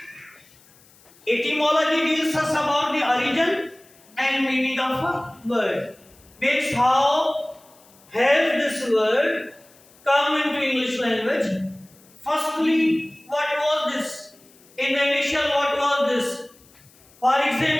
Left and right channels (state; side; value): noise; left; hiss, 28 dB below the sound